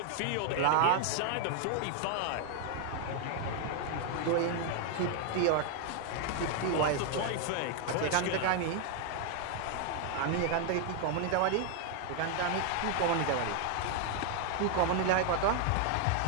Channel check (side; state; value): both; different; correlation 0.00